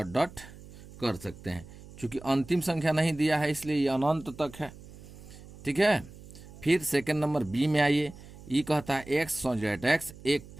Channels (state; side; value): noise; right; hum, 18 dB below the sound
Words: डॉट कर सकते हैं। चूंकि अंतिम संख्या नहीं दिया है इसलिए ये अनंत तक है। ठीक है, फिर सेकंड नंबर बी में आइए, ये कहता है एक्स एक्स एक